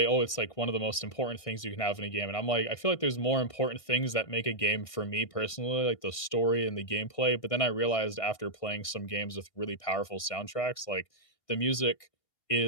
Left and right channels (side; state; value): right; late; 1.6 ms